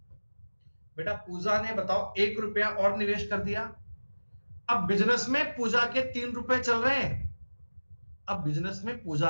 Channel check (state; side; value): inverted; both; correlation -1.00